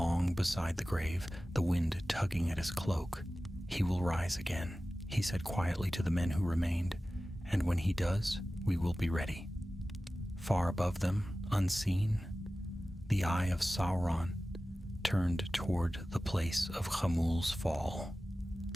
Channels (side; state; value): both; normal; correlation 0.96